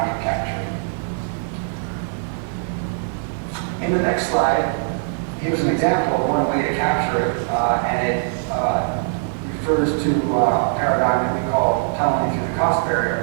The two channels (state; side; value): silent; left; digital silence